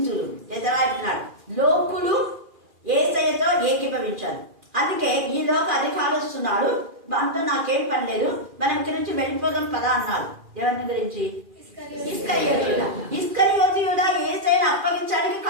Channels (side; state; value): left; late; 2.4 ms